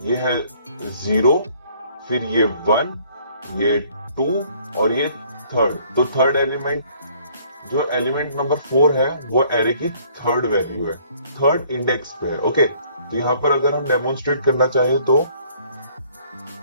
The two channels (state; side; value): inverted; both; correlation -0.59